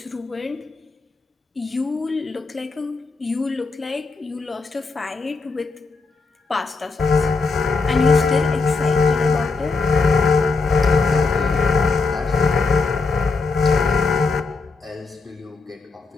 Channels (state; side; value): quieter; right; 4.1 dB